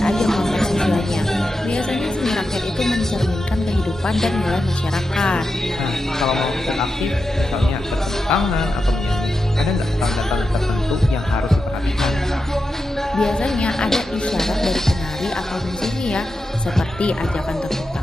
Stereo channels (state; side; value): normal; both; correlation 0.89